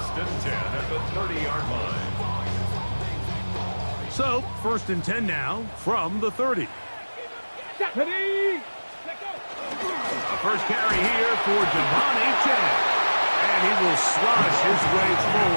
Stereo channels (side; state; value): both; inverted; correlation -1.00